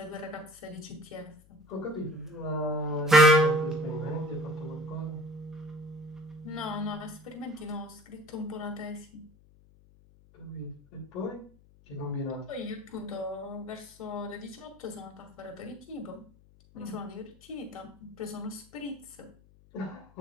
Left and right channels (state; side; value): noise; left; hum, 26 dB below the sound